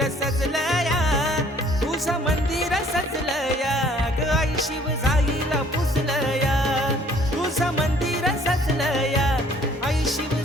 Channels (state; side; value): normal; both; correlation 0.58